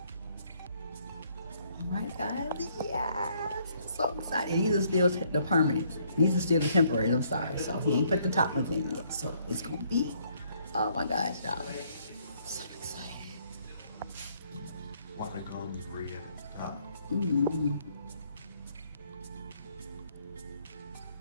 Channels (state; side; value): inverted; both; correlation -0.67